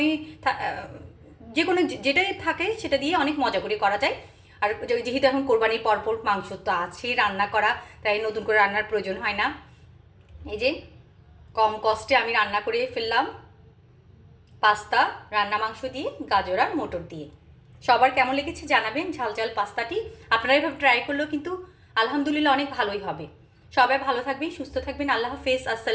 যে কোনো যেটাই থাকে সেটা দিয়ে অনেক মজা করে করা যায়। আর যেহেতু এখন কোরবানির পরপর মাংস তো আছে রান্না করা, তাই নতুন করে রান্নার প্রয়োজন হয় না। এই যে কম কষ্টে আমি রান্না করে ফেললাম পাস্তা রান্না মাংস দিয়ে, গাজর আর মটর দিয়ে। সবার কেমন লেগেছে জানাবেন ঝাল ঝাল পাস্তাটি। আপনারা এভাবে ট্রাই করলেও কিন্তু আলহামদুলিল্লাহ অনেক ভালোই হবে। সবাই ভালো থাকবেন, সুস্থ থাকবেন। আল্লাহ হাফেজ,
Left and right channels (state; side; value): identical; both; correlation 1.00